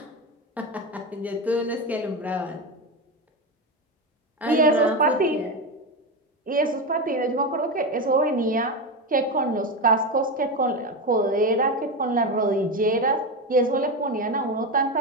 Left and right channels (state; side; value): normal; both; correlation 0.16